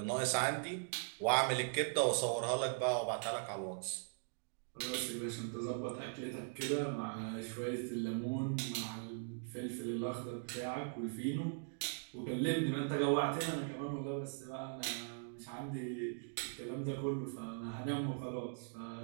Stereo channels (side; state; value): left; silent; digital silence